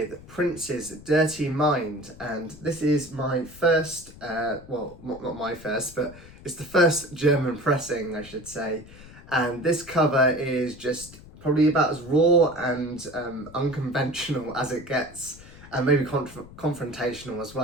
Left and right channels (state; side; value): noise; left; rumble, 19 dB below the sound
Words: Prince's Dirty Mind, and this is my first, well, not my first, but it's the first German pressing, I should say, and this cover is just probably about as raw and unconventional as it gets, and maybe confrontational as